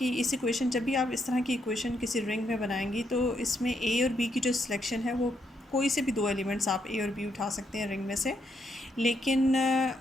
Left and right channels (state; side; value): normal; both; correlation 0.77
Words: इस इक्वेशन जब भी आप इस तरह की इक्वेशन किसी रिंग में बनाएंगी तो इसमें ए और बी की जो सिलेक्शन है वो कोई से भी दो एलिमेंट्स आप ए और बी उठा सकते हैं रिंग में से, लेकिन